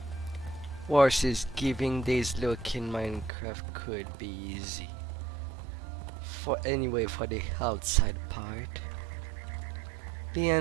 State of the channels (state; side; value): drops out; left; at 3.3 s